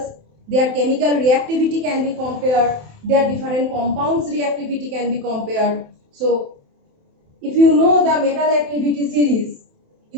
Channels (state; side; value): late; left; 27 ms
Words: their chemical reactivity can be compared, their different compounds reactivity can be compared. So if you know the metal activity series,